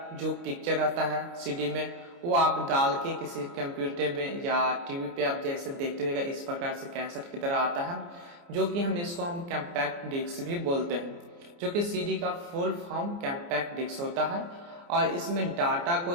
जो पिक्चर आता है CD में वो आप डाल के किसी कंप्यूटर में या टीवी पे आप जैसे देखते होइएगा इस प्रकार से कैसेट की तरह आता है, जो कि हम कॉम्पैक्ट डिस्क भी बोलते हैं, जो कि CD का फुल फॉर्म कॉम्पैक्ट डिस्क होता है और इसमें डाटा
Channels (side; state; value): left; late; 29 ms